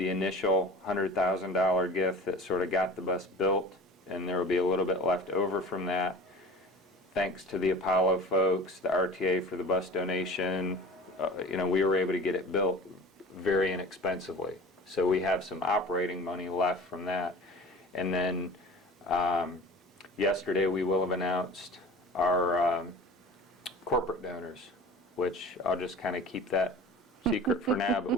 initial $100,000 gift that sort of got the bus built, and there will be a little bit left over from that. Thanks to the Apollo folks, the RTA for the bus donation, we were able to get it built very inexpensively. So we have some operating money left from that. And then yesterday we will have announced our corporate donors, which I'll just kind of keep that secret for now, but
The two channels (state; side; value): normal; both; correlation 0.40